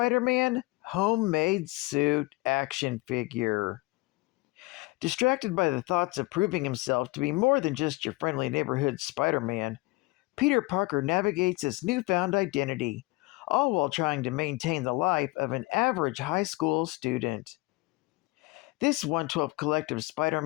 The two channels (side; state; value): right; quieter; 22.1 dB